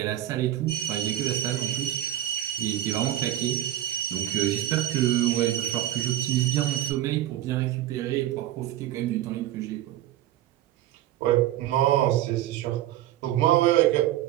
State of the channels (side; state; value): left; quieter; 13.2 dB